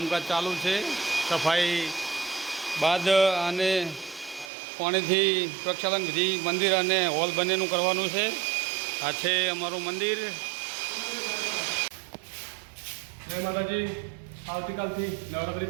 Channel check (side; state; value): left; drops out; at 4.5 s